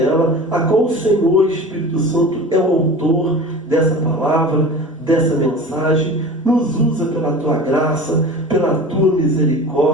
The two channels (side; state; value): both; normal; correlation 0.36